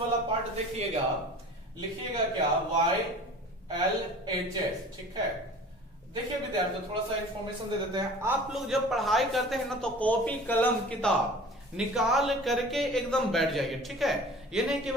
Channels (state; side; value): normal; both; correlation 0.43